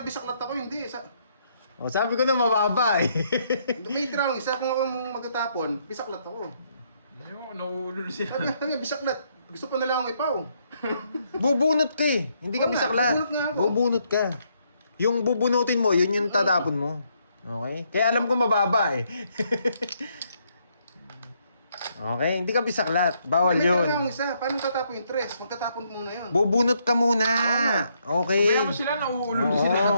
bisaklat ako, hindi. O, sabi ko na mababa eh. May tira isa kung ako magtatapon, bisaklat ako. Ayoko, nauulol siya. Sabi, bisaklat. Gusto pa nila akong ipaw. Bubunot ka eh. Hindi ka Oo nga, bisaklat. bubunot nga ako. Bubunot ka. Yung bubunutin mo, yun yung tatapon mo. Okay? Kaya alam ko mababa eh. Okay, hindi ka bisaklat. Bawal May yun. tira akong isa. Paano tatapon yung tres? Magtatapon mo na yun. Bubunot ka muna. Okay. Kaya mo sila, nauulol Oo. sila.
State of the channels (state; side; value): inverted; both; correlation -0.73